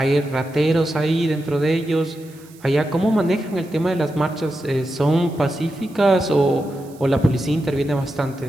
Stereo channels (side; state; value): right; noise; hiss, 26 dB below the sound